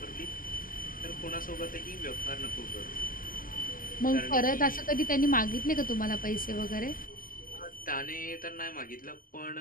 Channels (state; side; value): late; right; 0.41 ms